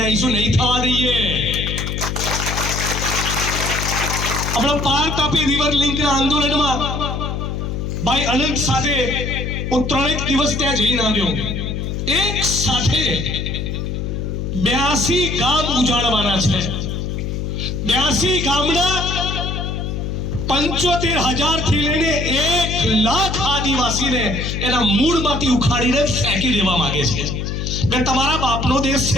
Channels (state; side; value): noise; left; hum, 3 dB below the sound